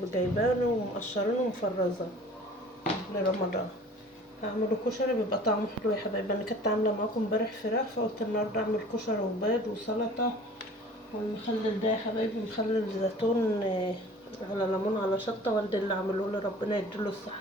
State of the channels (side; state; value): both; normal; correlation 0.47